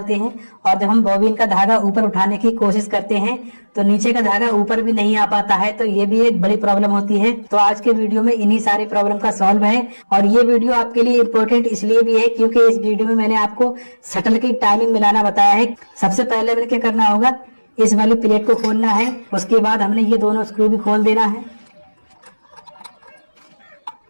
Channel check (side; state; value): both; inverted; correlation -1.00